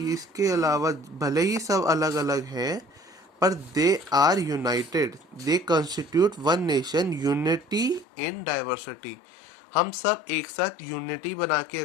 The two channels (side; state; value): right; drops out; at 8.1 s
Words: इसके अलावा भले ही सब अलग अलग हैं, पर they are united, they constitute one nation, unity in diversity. हम सब एक साथ यूनिटी बना के